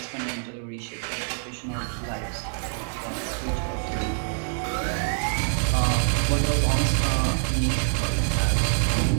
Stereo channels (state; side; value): silent; left; digital silence